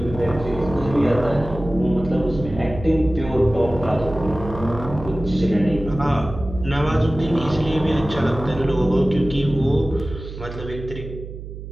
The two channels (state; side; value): noise; right; hum, 11 dB below the sound